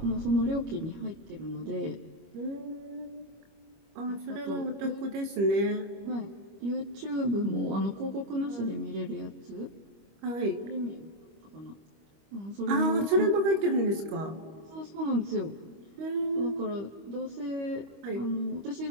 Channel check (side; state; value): left; late; 25 ms